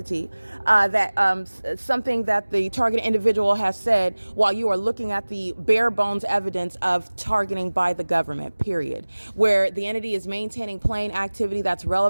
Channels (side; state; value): both; inverted; correlation -1.00